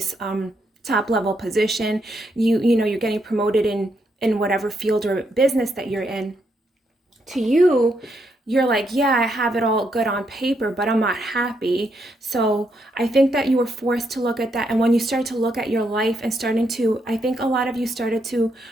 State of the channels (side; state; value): both; normal; correlation 0.78